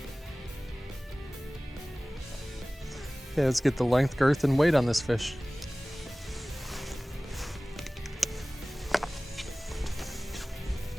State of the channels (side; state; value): both; normal; correlation 0.98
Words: Okay, let's get the length, girth, and weight on this fish.